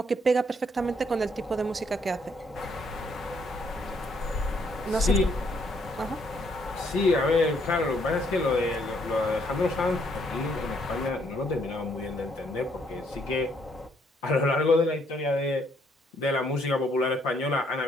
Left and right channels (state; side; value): normal; both; correlation 0.70